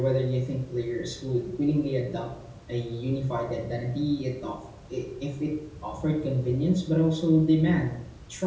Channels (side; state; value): both; identical; correlation 1.00